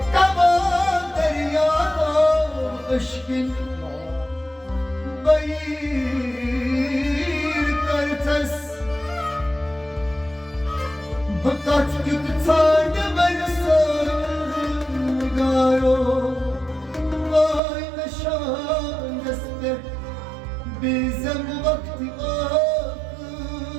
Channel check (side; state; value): left; drops out; at 17.6 s